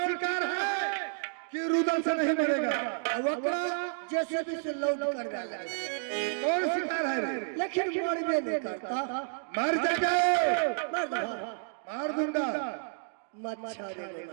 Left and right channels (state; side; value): silent; left; digital silence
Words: शिकार है कि रुदल से नहीं मरेगा। अब ओकरा जेसीबी से लोड कर डाला। कौन शिकार है रे। लेकिन मरबे नहीं करता। मर जाएगा। मार दो मार दूंगा। मच्छर रे